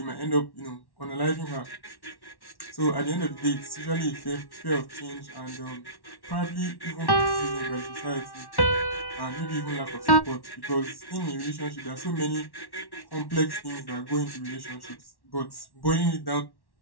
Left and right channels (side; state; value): right; late; 1.1 ms